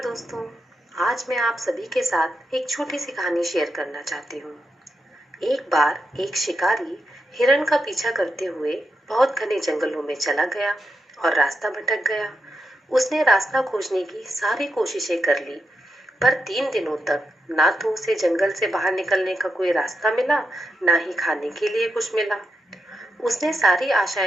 दोस्तों। आज मैं आप सभी के साथ एक छोटी सी कहानी शेयर करना चाहती हूँ। एक बार एक शिकारी हिरण का पीछा करते हुए बहुत घने जंगलों में चला गया और रास्ता भटक गया। उसने रास्ता खोजने की सारी कोशिशें कर ली, पर 3 दिनों तक ना तो उसे जंगल से बाहर निकलने का कोई रास्ता मिला, ना ही खाने के लिए कुछ मिला। उसने सारी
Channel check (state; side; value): normal; both; correlation 0.85